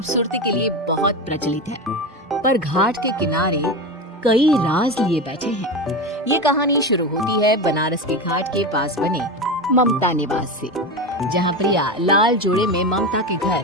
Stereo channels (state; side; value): normal; both; correlation 0.21